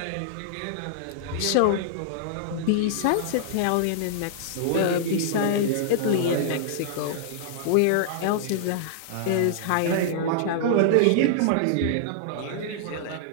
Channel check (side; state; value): both; different; correlation -0.01